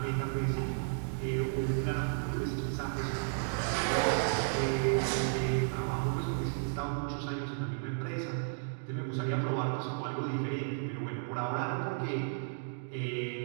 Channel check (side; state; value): left; silent; digital silence